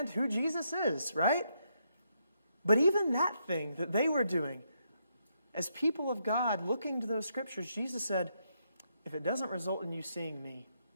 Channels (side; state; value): both; inverted; correlation -0.78